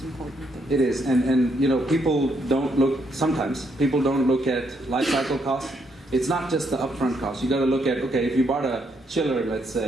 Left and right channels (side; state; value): both; normal; correlation 0.75